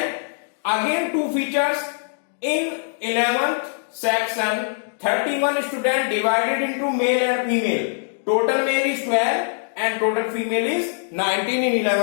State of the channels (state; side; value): silent; right; digital silence